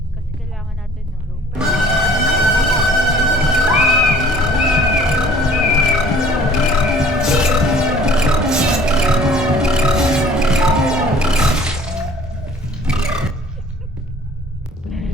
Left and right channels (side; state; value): both; normal; correlation 0.52